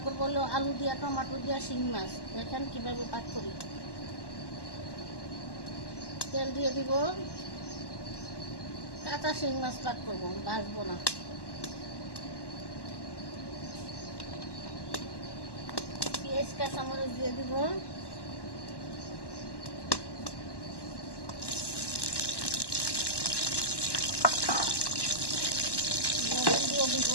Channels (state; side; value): late; right; 1.1 ms